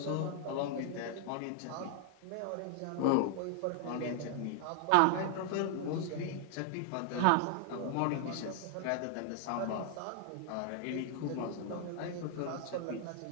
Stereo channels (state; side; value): different; both; correlation 0.00